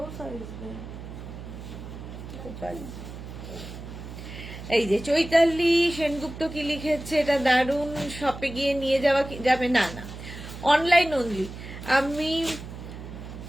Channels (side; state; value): right; noise; hum, 11 dB below the sound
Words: সাইজ। এই যে চৈতালি সেনগুপ্ত কি লিখেছে, এটা দারুণ, শপে গিয়ে নিয়ে যাওয়া যাবে? না না, অনলাইন অনলি। আমি